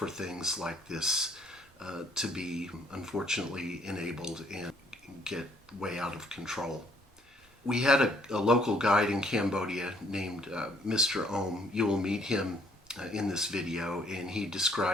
things like this to be unfortunately enabled and get way out of control. We had a local guide in Cambodia named Mr. Ohm. You will meet him in this video, and he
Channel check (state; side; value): normal; both; correlation 0.64